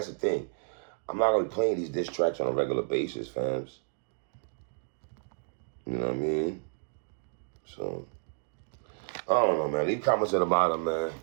thing. I'm not gonna be playing these diss tracks on a regular basis, fams. You know what I mean? So, I don't know, man. Leave comments at the bottom, man.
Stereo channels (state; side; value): silent; left; digital silence